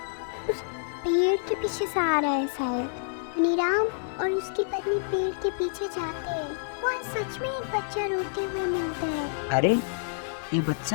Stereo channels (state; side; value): silent; right; digital silence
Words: उस पेड़ के पीछे से आ रहा है शायद। धनीराम और उसकी पत्नी पेड़ के पीछे जाते हैं। वहाँ सच में एक बच्चा रोते हुए मिलता है। अरे ये